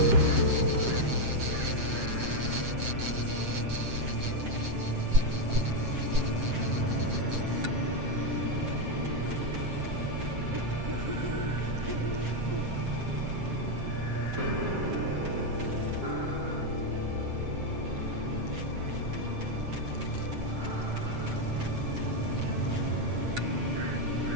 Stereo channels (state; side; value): late; left; 7.6 ms